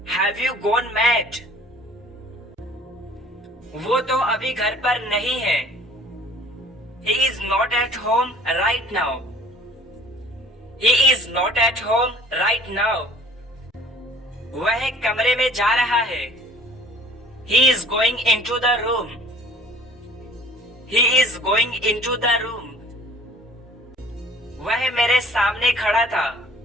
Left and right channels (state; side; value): normal; both; correlation 0.51